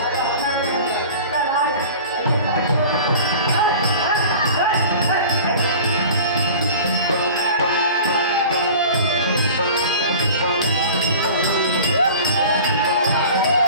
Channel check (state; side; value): inverted; both; correlation -0.40